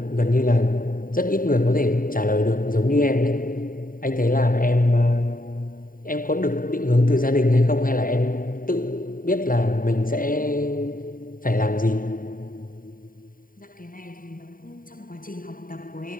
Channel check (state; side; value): late; right; 0.41 ms